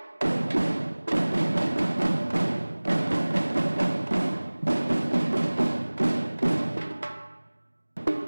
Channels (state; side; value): inverted; both; correlation -1.00